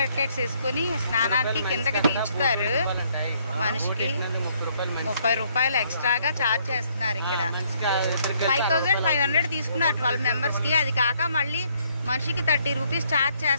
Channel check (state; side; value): inverted; both; correlation -0.68